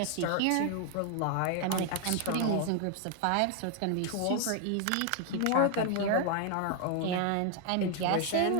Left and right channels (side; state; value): both; different; correlation 0.00